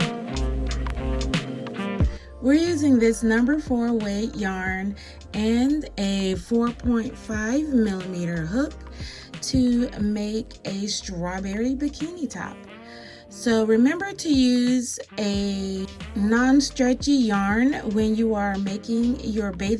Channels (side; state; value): both; identical; correlation 1.00